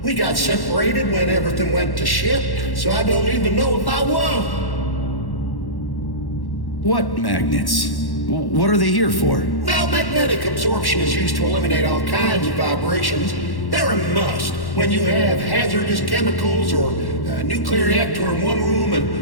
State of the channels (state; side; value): late; right; 1.1 ms